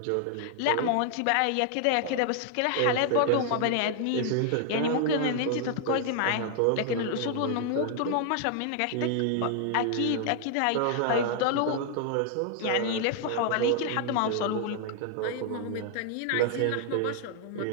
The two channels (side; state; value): both; different; correlation 0.00